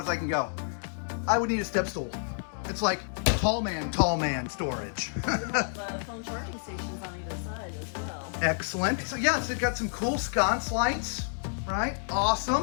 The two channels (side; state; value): right; silent; digital silence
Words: I can go. I would need a step stool. It's like tall man storage. We have phone charging stations on either side as well. Excellent. So yes, it's got some cool sconce lights, right?